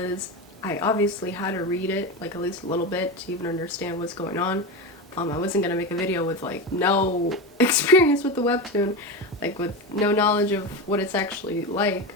I obviously had to read it like at least a little bit to even understand what's going on. I wasn't gonna make a video with like no experience with the webtoon, like with no knowledge of what it's actually like.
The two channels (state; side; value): normal; both; correlation 0.20